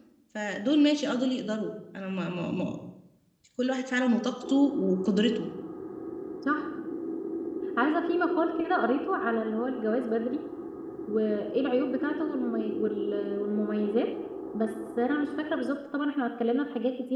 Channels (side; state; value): both; identical; correlation 1.00